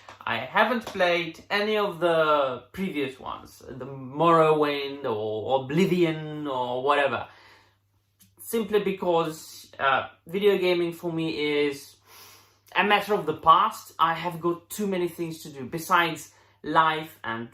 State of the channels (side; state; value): both; identical; correlation 1.00